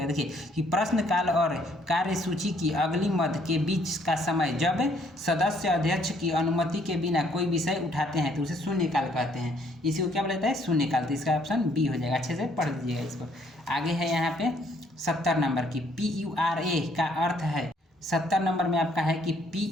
देखिए कि प्रश्नकाल और कार्यसूची की अगली मद के बीच का समय जब सदस्य अध्यक्ष की अनुमति के बिना कोई विषय उठाते हैं तो उसे शून्यकाल कहते हैं। इसी को क्या बोला जाता है, शून्यकाल। तो इसका ऑप्शन बी हो जाएगा, अच्छे से पढ़ लीजिएगा इसको। आगे है यहाँ पे 70 नंबर की PURA का अर्थ है। 70 नंबर में आपका है कि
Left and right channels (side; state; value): both; normal; correlation 0.66